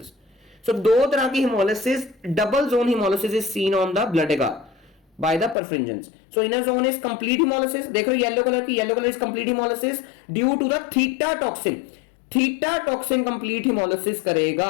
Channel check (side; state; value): right; drops out; at 5.6 s